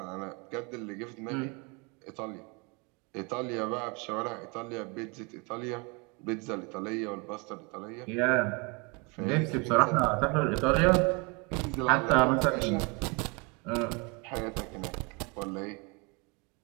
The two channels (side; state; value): left; quieter; 30.5 dB